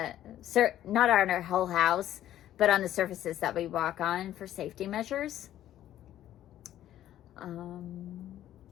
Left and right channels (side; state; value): right; quieter; 12.4 dB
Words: not on our whole house, but on the surfaces that we walk on for safety measures.